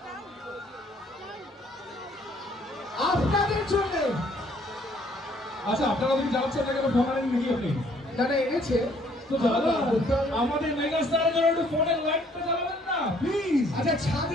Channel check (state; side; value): normal; both; correlation 0.62